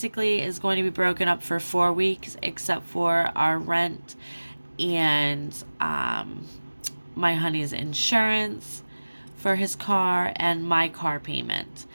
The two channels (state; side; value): inverted; both; correlation -1.00